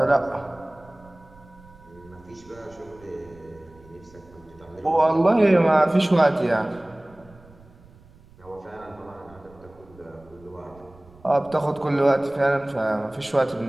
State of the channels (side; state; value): right; noise; rumble, 25 dB below the sound